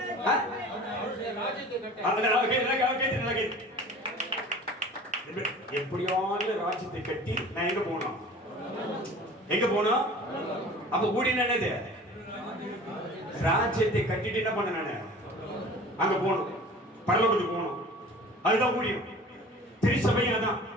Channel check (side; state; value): both; normal; correlation 0.43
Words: எப்படியாவது ராஜ்யத்தை கட்டி நான் எங்க போனோம்? எங்க போனோம்? அப்ப ஊழியம் என்னது? ராஜ்யத்தை கட்டிட்டு என்ன பண்ண? நானு அங்க போகணும், பரலோகத்துக்கு போகணும். அதுதான் ஊழியம். திருச்சபையும் அதான்.